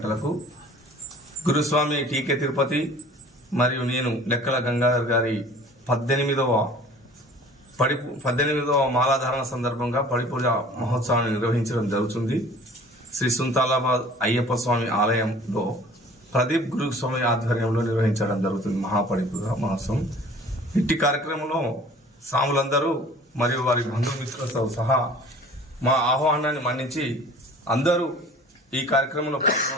గురుస్వామి టీకే తిరుపతి మరియు నేను లెక్కల గంగాధర్ గారి 18వ మాలాధారణ సందర్భంగా పడిపూజ మహోత్సవాన్ని నిర్వహించడం జరుగుతుంది. శ్రీ సుంతాలాబాద్ అయ్యప్ప స్వామి ఆలయంలో ప్రదీప్ గురుస్వామి ఆధ్వర్యంలో నిర్వహించడం జరుగుతుంది మహాపడిపూజ మహోత్సవం. ఇట్టి కార్యక్రమంలో స్వాములందరూ మరియు వారి బంధుమిత్రులతో సహా మా ఆహ్వానాన్ని మన్నించి అందరూ ఈ కార్యక్రమంలో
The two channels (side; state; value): both; normal; correlation 0.48